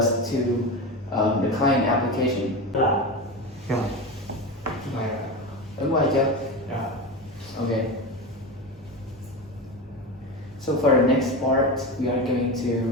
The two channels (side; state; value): both; normal; correlation 0.21